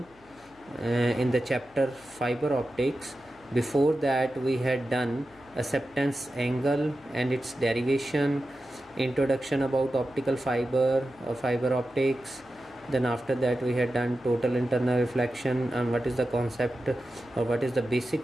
in the chapter fiber optics. Before that we had done acceptance angle and its derivation, introduction about optical fiber or fiber optics. Then after that we had done total internal reflection and what is the concept or what is the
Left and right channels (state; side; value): noise; left; hum, 28 dB below the sound